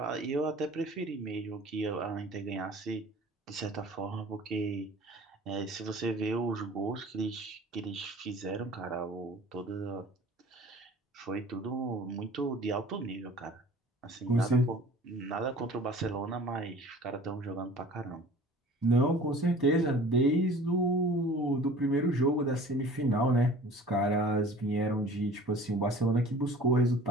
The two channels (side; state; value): both; normal; correlation 0.45